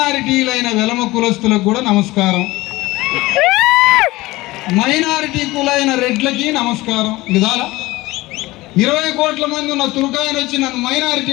వెలమ కులస్తులకు కూడా నమస్కారం, మైనారిటీ కులైన రెడ్లకి నమస్కారం. విధాల 20 కోట్ల మంది ఉన్న తుర్కాయన వచ్చి నన్ను మైనారిటీ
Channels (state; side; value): quieter; right; 19.7 dB